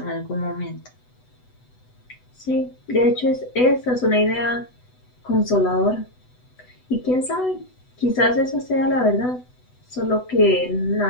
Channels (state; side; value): late; right; 8.0 ms